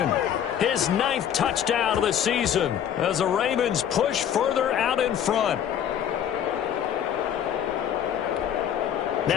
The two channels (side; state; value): right; quieter; 9.5 dB